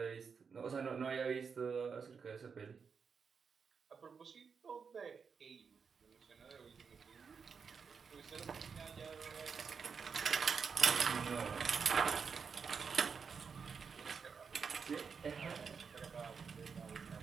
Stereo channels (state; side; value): quieter; left; 5.9 dB